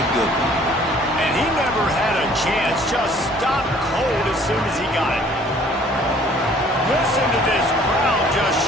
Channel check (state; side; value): normal; both; correlation 0.56